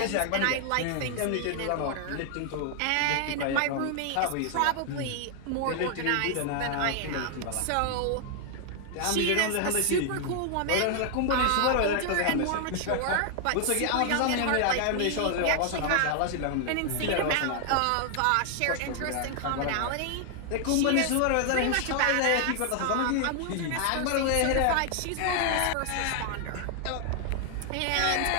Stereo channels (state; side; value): different; both; correlation 0.00